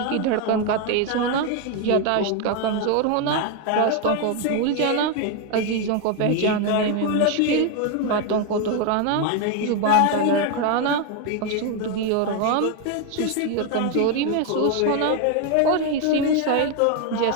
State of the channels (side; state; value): both; different; correlation 0.01